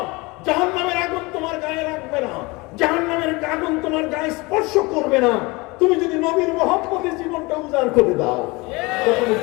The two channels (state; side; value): quieter; right; 24.9 dB